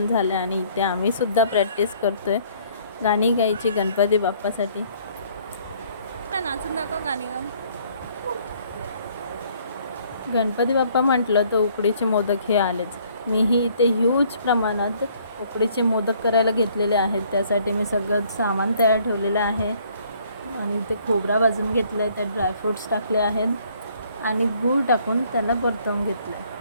झालं आणि इथे आम्ही सुद्धा प्रॅक्टिस करतोय गाणी गायची गणपती बाप्पासाठी. नाचून दाखव गाणी गा. गणपती बाप्पा म्हटलं तर उकडीचे मोदक हे आलेच. मीही इथे ह्यूज प्रमाणात उकडीचे मोदक करायला घेतलेले आहेत. त्यासाठी मी सगळं सामान तयार ठेवलेलं आहे आणि इथे खोबरा भाजून घेतला आहे, त्यात ड्रायफ्रूट्स टाकले आहेत आणि गूळ टाकून त्याला परतवून घेतलं आहे.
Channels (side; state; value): both; inverted; correlation -0.61